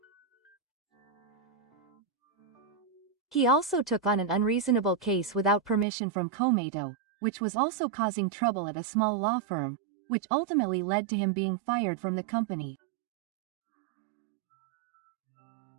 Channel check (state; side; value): drops out; left; at 5.9 s